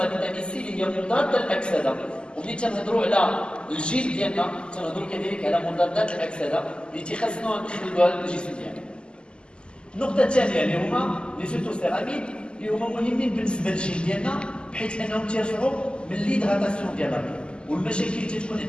فيتامين سي اللي هي مضادة للأكسدة. وملي تنهضروا على الجلد ديالنا تنهضروا كذلك على مضادات الأكسدة اللي تيخصنا ندخلوها للجسم ديالنا. النقطة الثانية اللي هما لي فيتوسيراميد اللي هما مهمين بالنسبة للجلد ديالنا بحيث أنهم تيرفعوا من ليدغاتاسيون ديالنا، والمشاكل اللي تتكون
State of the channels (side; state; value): right; late; 0.050 ms